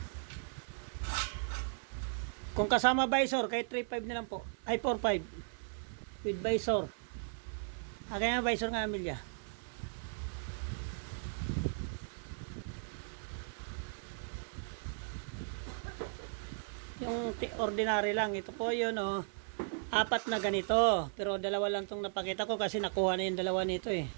Kung kasama visor, kaya 3,500 na lang po. Ay 4,500 with visor. Kaya nga visor nga Amelia. Yung ordinary lang. Ito po yun 4 na ganito. Pero 2 lang itong napakita ko kasi nakuha na yung 2 nito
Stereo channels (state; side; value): silent; left; 53 dB below the other